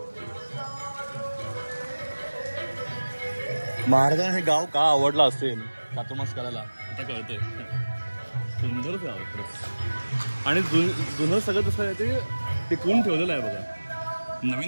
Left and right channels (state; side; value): inverted; both; correlation -1.00